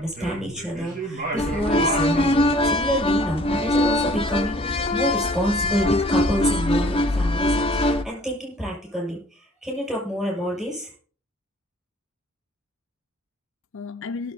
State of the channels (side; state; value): both; normal; correlation 0.55